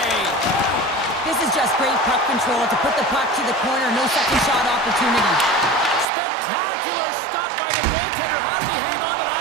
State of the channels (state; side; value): drops out; left; at 6.1 s